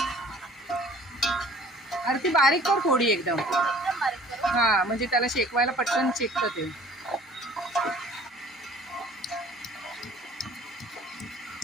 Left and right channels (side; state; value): both; normal; correlation 0.51